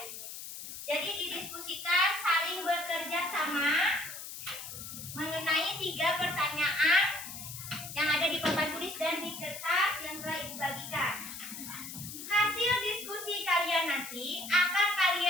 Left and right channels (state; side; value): noise; left; hiss, 10 dB below the sound